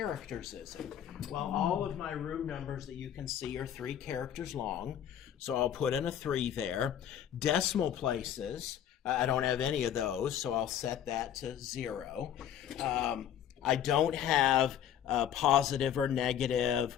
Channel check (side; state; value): right; quieter; 10.0 dB